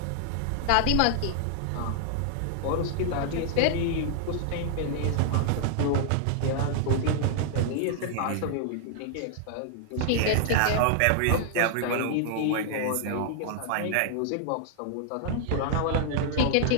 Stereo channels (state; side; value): different; both; correlation -0.01